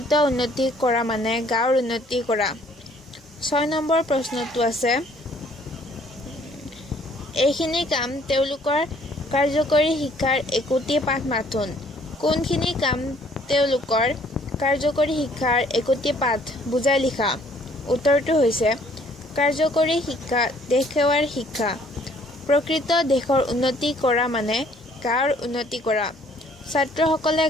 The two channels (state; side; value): normal; both; correlation 0.61